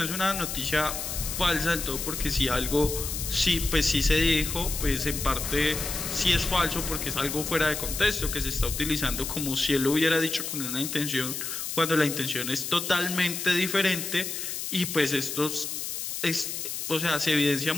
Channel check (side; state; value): left; noise; hiss, 4 dB below the sound